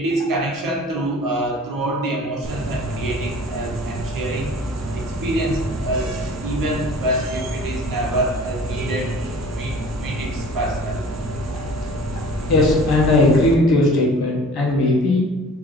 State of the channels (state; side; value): normal; both; correlation 0.46